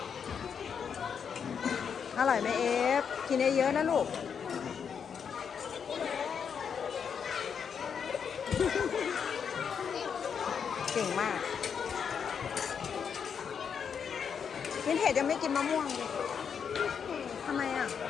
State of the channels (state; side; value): quieter; right; 7.0 dB